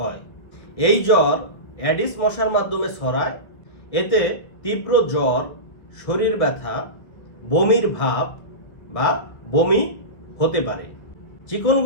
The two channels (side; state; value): right; late; 1.5 ms